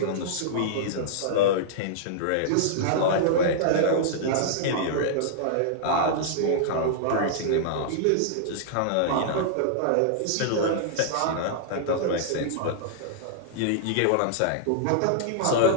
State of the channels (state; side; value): different; both; correlation -0.02